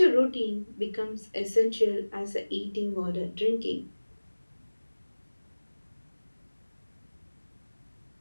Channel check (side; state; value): both; inverted; correlation -1.00